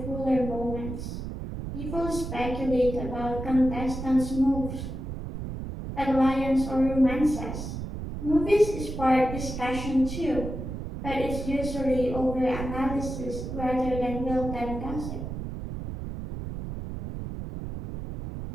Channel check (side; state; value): right; noise; rumble, 6 dB below the sound